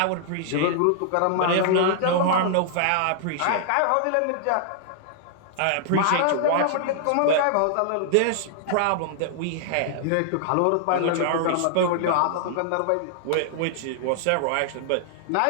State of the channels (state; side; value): different; both; correlation -0.01